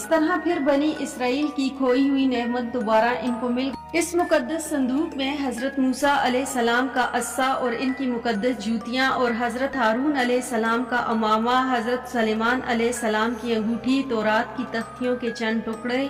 طرح پھر بنی اسرائیل کی کھوئی ہوئی نعمت دوبارہ ان کو مل گئی۔ اس مقدس صندوق میں حضرت موسیٰ علیہ السلام کا عصا اور ان کی مقدس جوتیاں، اور حضرت ہارون علیہ السلام کا امامہ، حضرت سلیمان علیہ السلام کی انگوٹھی، تورات کی تختیوں کے چند ٹکڑے،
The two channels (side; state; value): both; identical; correlation 1.00